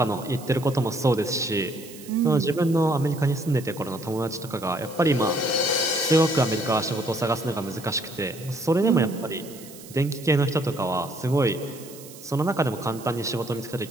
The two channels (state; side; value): noise; right; hiss, 18 dB below the sound